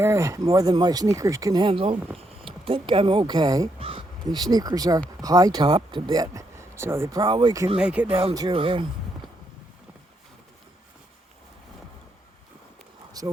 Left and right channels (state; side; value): normal; both; correlation 0.78